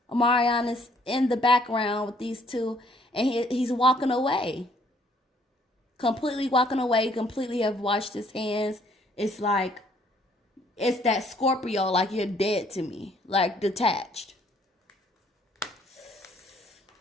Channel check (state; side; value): normal; both; correlation 0.64